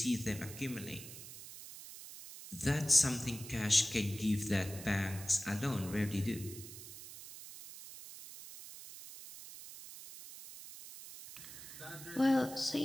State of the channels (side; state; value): right; noise; hiss, 13 dB below the sound